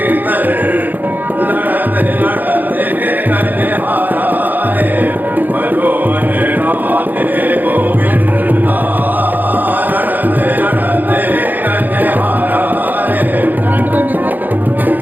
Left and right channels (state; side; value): late; left; 0.085 ms